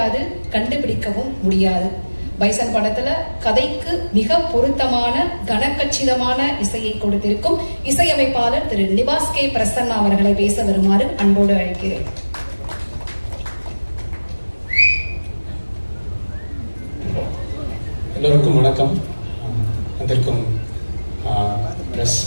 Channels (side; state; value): both; inverted; correlation -1.00